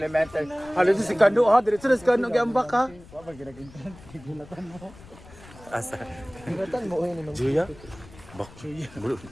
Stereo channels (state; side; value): noise; left; rumble, 20 dB below the sound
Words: Halos si Kano, ha? Diretso na si Kano, gamba ka. Asa? Gulatan mo yun. Juya? Bak.